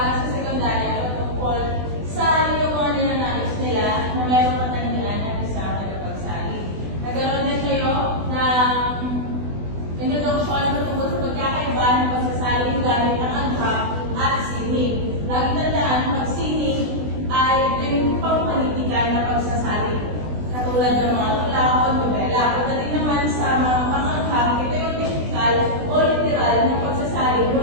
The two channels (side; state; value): left; late; 20 ms